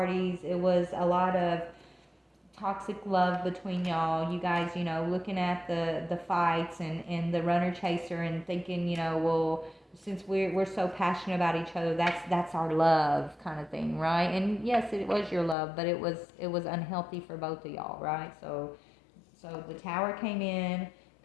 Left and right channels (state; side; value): drops out; right; at 15.6 s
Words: It was a lot of toxic love between y'all. You guys, looking at the fights and the runner chaser and thinking, well, since we're so passionate about each other, that's our love kind of thing, right? And yes, it was your love, but it was unhealthy for both of y'all, right? So the tower came in,